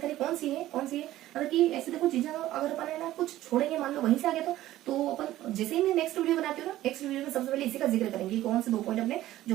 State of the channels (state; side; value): quieter; left; 14.7 dB